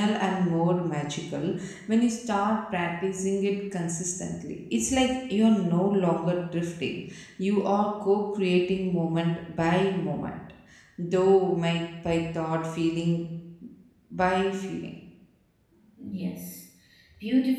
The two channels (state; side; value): identical; both; correlation 1.00